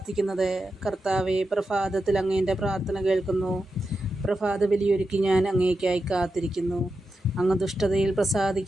കർത്താവേ, പ്രഭാതത്തിൽ അങ്ങേൻ്റെ പ്രാർത്ഥന കേൾക്കുന്നു. പ്രഭാത ബലിയൊരുക്കി ഞാൻ അങ്ങേയ്ക്കായി കാത്തിരിക്കുന്നു. അങ്ങ് ദുഷ്ടതയിൽ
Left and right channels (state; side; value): normal; both; correlation 0.89